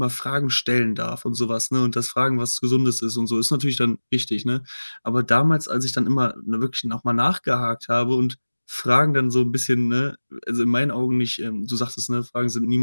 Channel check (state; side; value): inverted; both; correlation -1.00